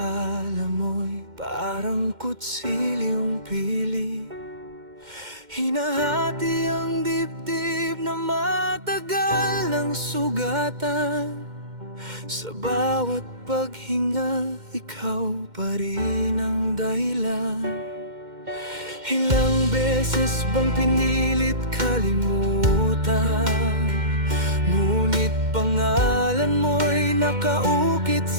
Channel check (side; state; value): left; late; 2.1 ms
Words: mo'y parang kutsilyong pili. Hinahati ang dibdib na matagal ng sugatan. Sa bawat paghinga, ikaw pa rin ang dahilan. Ilang beses bang pinilit kalimutan, ngunit pangalan mo'y nakaukit